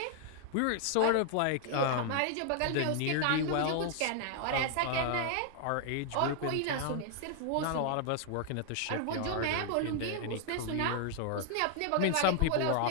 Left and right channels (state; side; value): different; both; correlation 0.00